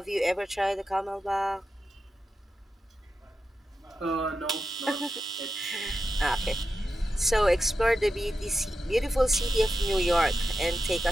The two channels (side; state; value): both; normal; correlation 0.90